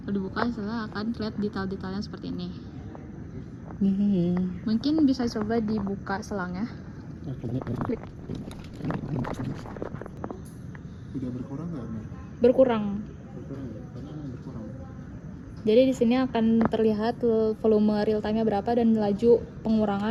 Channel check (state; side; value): identical; both; correlation 1.00